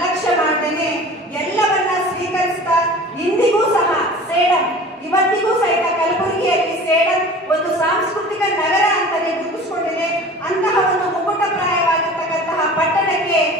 ಮಾಡ್ದೇನೆ ಎಲ್ಲವನ್ನ ಸ್ವೀಕರಿಸ್ತಾ ಇಂದಿಗೂ ಸಹ ಸೇಡಂ, ಇವತ್ತಿಗೂ ಸಹಿತ ಕಲಬುರಗಿಯಲ್ಲಿ ಸೇಡಂ ಒಂದು ಸಾಂಸ್ಕೃತಿಕ ನಗರ ಅಂತಾನೆ ಗುರುತಿಸಿಕೊಂಡಿದೆ. ಅಂತಹ ಒಂದು ಮುಕುಟಪ್ರಾಯವಾಗಿರ್ತಕ್ಕಂತಹ ಪಟ್ಟಣಕ್ಕೆ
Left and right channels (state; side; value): normal; both; correlation 0.41